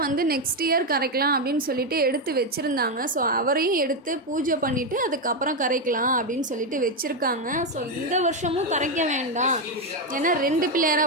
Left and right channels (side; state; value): both; normal; correlation 0.06